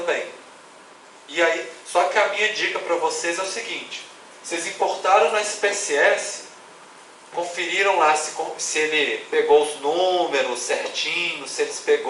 E aí, só que a minha dica para vocês é o seguinte: vocês importaram no SPSS, conferiram lá se ele pegou os números certinhos, se eles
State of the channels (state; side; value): identical; both; correlation 1.00